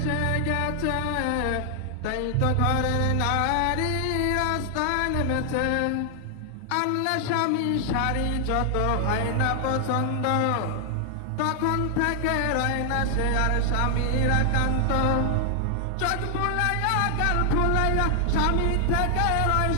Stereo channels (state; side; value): different; both; correlation 0.00